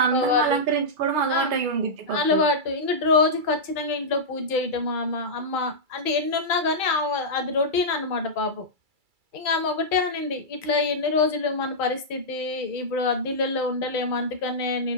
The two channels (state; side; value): late; left; 2.3 ms